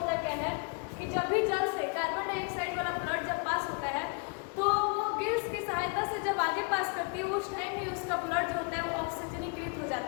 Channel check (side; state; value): right; quieter; 35.3 dB